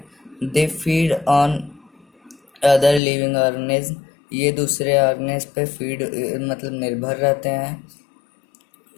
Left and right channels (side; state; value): right; drops out; at 3.0 s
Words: They feed on other living organism. ये दूसरे ऑर्गेनिज्म पे फीड मतलब निर्भर रहते हैं।